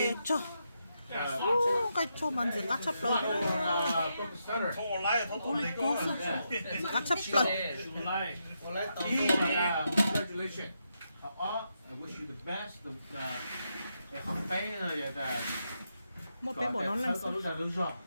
cho cái cho mình chỉ cắt chắp lời cắt chắp lời Congratulations. I wish you the best. Học bé là một bé bỏ nó lên sau đó đúng rồi.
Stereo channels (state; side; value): inverted; both; correlation -0.83